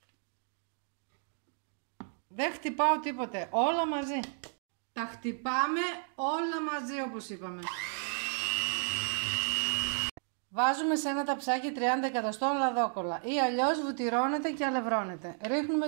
Δεν χτυπάω τίποτε, όλα μαζί. Τα χτυπάμε όλα μαζί όπως είπαμε. Βάζουμε σε ένα ταψάκι 30 εκατοστών λαδόκολλα ή αλλιώς βουτυρώνεται και αλευρώνεται. Ρίχνουμε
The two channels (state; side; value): silent; left; 56 dB below the other